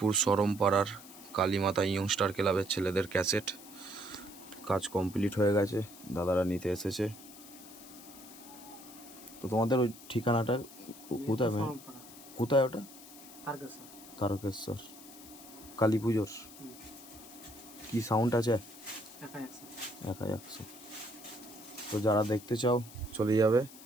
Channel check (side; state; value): left; noise; hiss, 17 dB below the sound